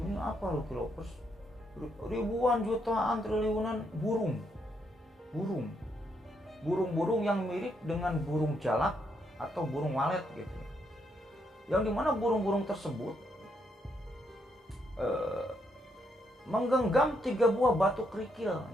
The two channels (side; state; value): both; normal; correlation 0.77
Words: ini apa loh Cleopas, ribuan, jutaan, triliunan burung yang mirip dengan burung jalak atau burung walet gitu. Yang dimana burung-burung tersebut menggenggam 3 buah batu kerikil